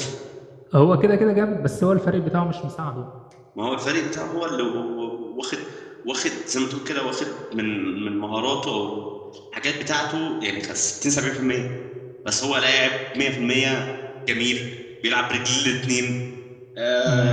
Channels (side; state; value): both; identical; correlation 1.00